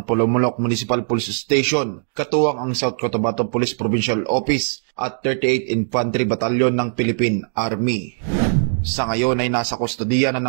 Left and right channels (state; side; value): silent; left; 66 dB below the other